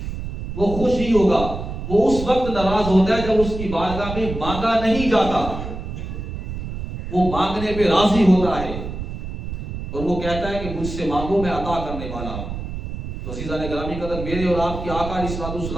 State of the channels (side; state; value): right; noise; rumble, 7 dB below the sound